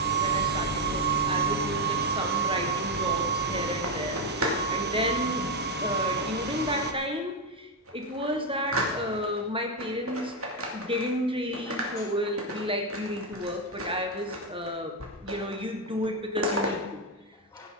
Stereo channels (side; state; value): both; normal; correlation 0.06